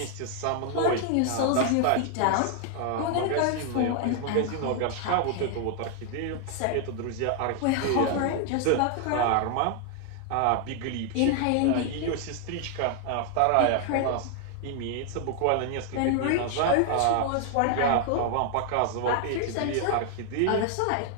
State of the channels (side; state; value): both; different; correlation 0.00